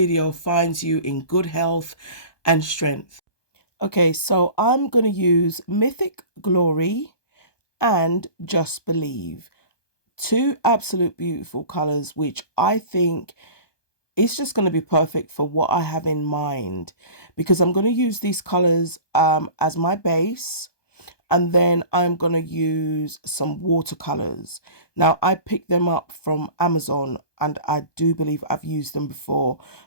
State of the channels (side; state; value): right; late; 1.2 ms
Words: finds you in good health and strength. Okay, so I'm going to use Mythic Glory and Just Believe. Two absolute beautiful colors, which I think it's just going to be perfect for what I have in mind, because I'm going to use these colors as my base, and then I'm going to use some watercolors. Now, I picked them up from Amazon, and I do believe I've used them before,